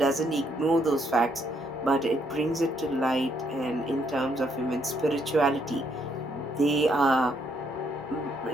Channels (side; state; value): both; normal; correlation 0.72